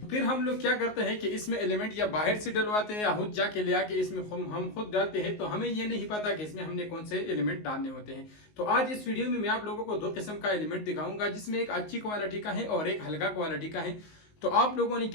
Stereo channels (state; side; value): late; right; 19 ms